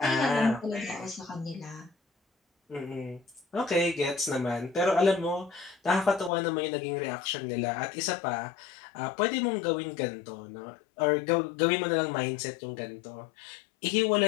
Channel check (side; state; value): right; drops out; at 6.3 s